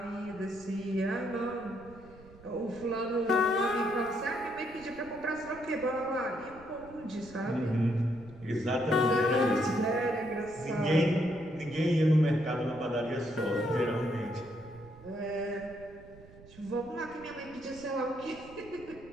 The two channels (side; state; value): right; noise; rumble, 21 dB below the sound